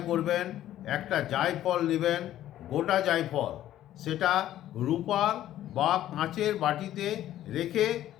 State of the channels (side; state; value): right; quieter; 12.8 dB